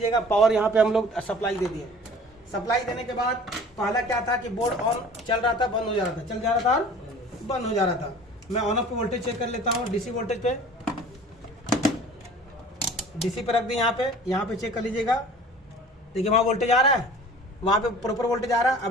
पावर यहाँ पे हम लोग सप्लाई दे दिए। सप्लाई देने के बाद पहला क्या था कि बोर्ड ऑन चल रहा था, बंद हो जा रहा था, चल जा रहा था और बंद हो जा रहा था। मैं ऑन ऑफ पे वोल्टेज चेक कर लेता हूँ। डीसी वोल्टेज पे, डीसी पे रख दी। यहाँ पे चेक कर लीजिएगा, देखिए वहाँ वोल्टेज आ रहा है, वहाँ पे प्रॉपर वोल्टेज आ रहा है।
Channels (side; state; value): both; normal; correlation 0.45